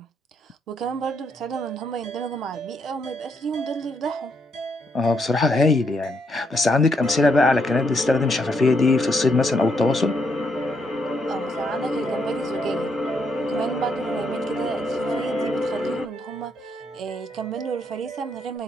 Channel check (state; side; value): normal; both; correlation 0.76